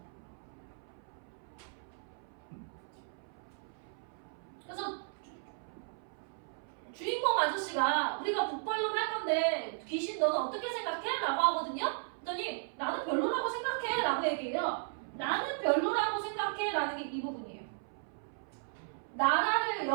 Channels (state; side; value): silent; left; 54 dB below the other